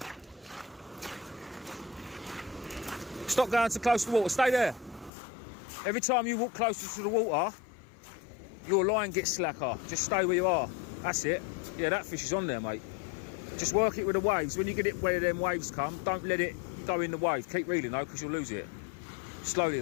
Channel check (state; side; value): drops out; right; at 5.1 s